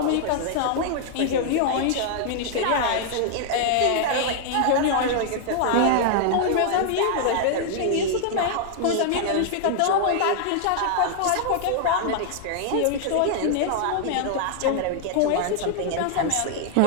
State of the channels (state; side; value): different; both; correlation -0.01